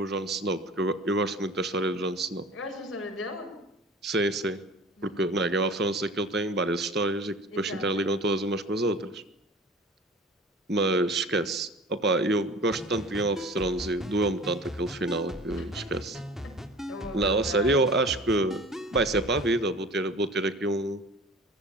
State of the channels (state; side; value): normal; both; correlation 0.42